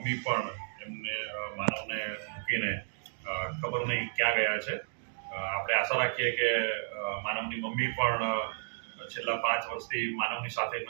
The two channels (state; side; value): silent; left; digital silence